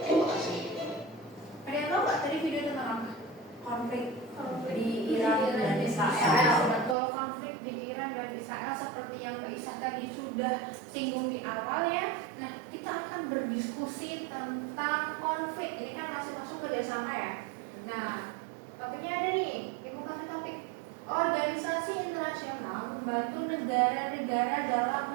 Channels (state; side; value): drops out; left; at 7.0 s